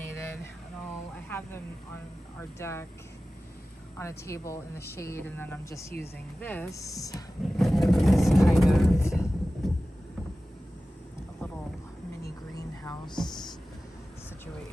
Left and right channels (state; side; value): normal; both; correlation 0.96